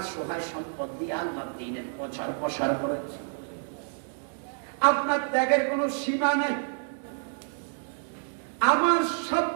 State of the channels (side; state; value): left; silent; 56 dB below the other